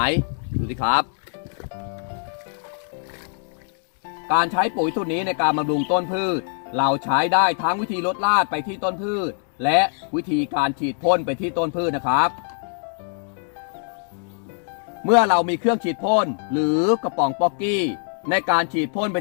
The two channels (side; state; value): right; silent; 59 dB below the other